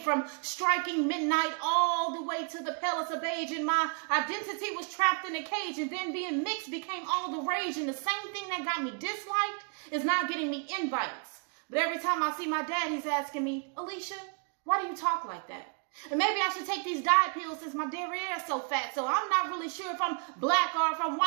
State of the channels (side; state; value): left; quieter; 38.6 dB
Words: from striking midnight all the way to the palest of beige, and my identity was trapped in a cage, and then being mixed became all the rage, and the same thing that got me disliked is now getting me invites. But every time I see my dad, he's asking me, Alicia, why do you talk like that? And maybe I should take these diet pills since my derriere is so fat, so I'm not really sure if I'm black or if I'm